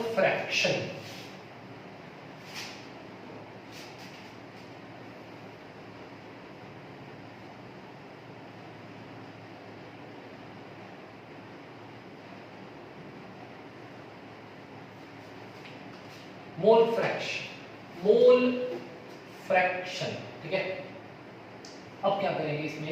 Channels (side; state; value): both; identical; correlation 1.00